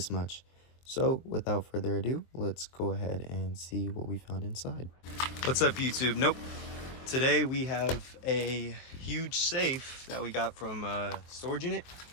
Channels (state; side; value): late; right; 23 ms